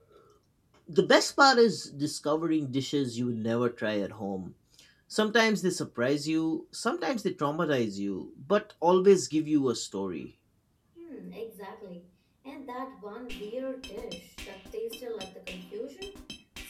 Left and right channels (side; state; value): both; identical; correlation 1.00